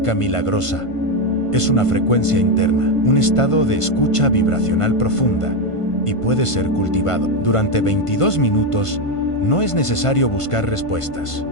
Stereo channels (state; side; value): late; right; 1.5 ms